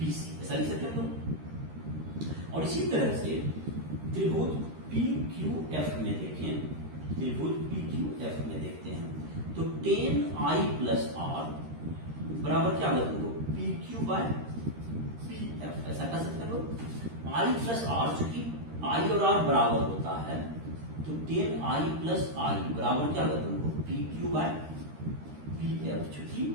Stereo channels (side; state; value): left; late; 13 ms